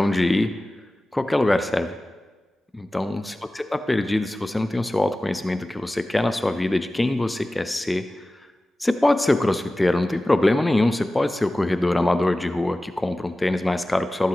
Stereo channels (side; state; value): both; normal; correlation 0.96